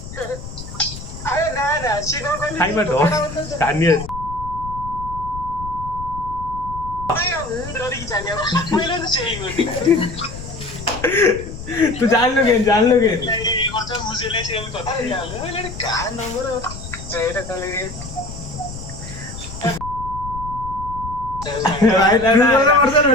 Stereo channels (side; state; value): left; noise; rumble, 11 dB below the sound